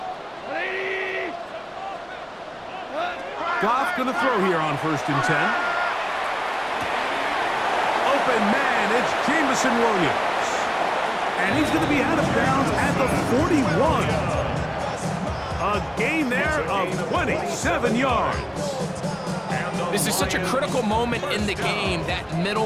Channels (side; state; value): both; identical; correlation 1.00